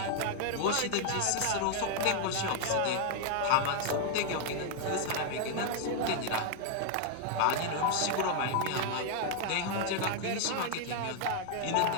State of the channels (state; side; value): different; both; correlation 0.00